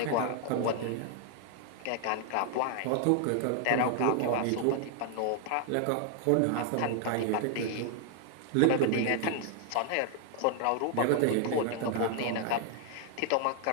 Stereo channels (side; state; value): both; different; correlation 0.00